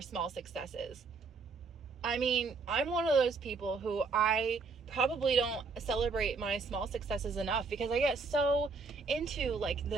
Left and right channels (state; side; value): quieter; left; 4.4 dB